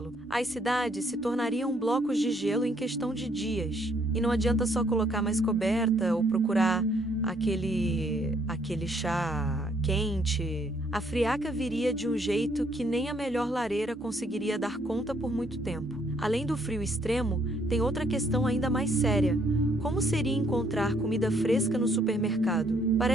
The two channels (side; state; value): both; normal; correlation 0.68